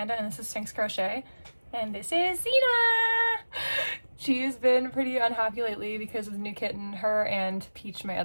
and this is Sphynx Crochet, and this is Zena. She's been pretty unhappy lately because of the new kitten. Her and Peach, my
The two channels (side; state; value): both; inverted; correlation -1.00